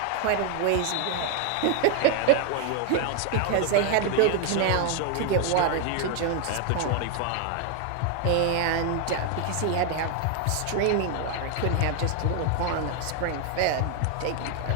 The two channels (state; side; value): different; both; correlation 0.00